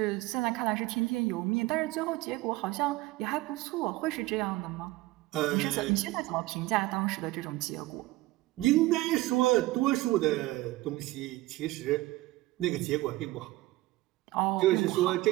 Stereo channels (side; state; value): left; quieter; 18.7 dB